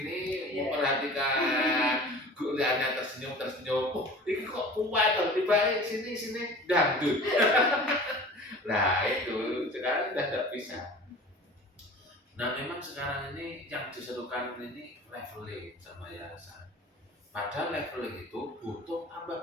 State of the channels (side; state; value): both; normal; correlation 0.41